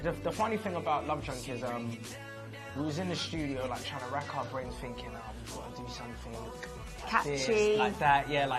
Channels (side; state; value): both; identical; correlation 1.00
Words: the funny thing about Love Drunk is we was in the studio like trying to rack our brains thinking, we've got to do something Catchy. this, like that, yeah,